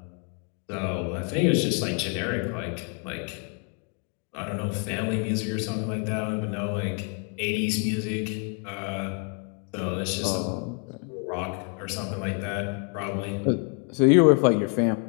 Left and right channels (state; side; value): quieter; right; 36.8 dB